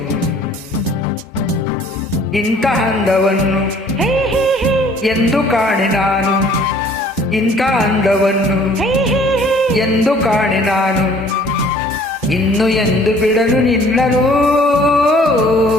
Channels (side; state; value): both; normal; correlation 0.55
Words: ಇಂಥ ಅಂದವನ್ನು ಎಂದು ಕಾಣೆ ನಾನು, ಇಂಥ ಅಂದವನ್ನು ಎಂದು ಕಾಣೆ ನಾನು, ಇನ್ನು ಎಂದು ಬಿಡಲು ನಿನ್ನನು.